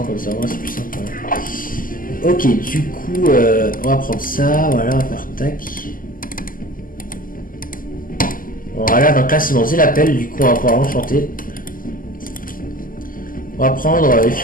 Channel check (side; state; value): right; late; 0.41 ms